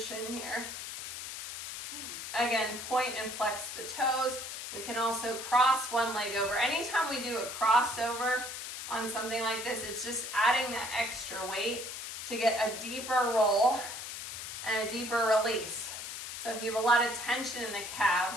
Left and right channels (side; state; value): left; noise; hiss, 8 dB below the sound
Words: here. Again, point and flex the toes. We can also cross one leg over. Anytime we do a crossover, on something like this. It's just adding that extra weight to get a deeper roll and a deeper release. So if you have a lot of tension in the